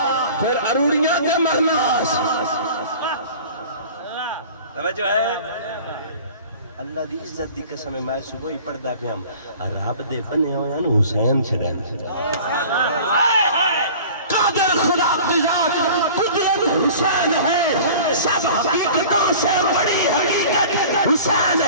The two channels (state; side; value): inverted; both; correlation -0.43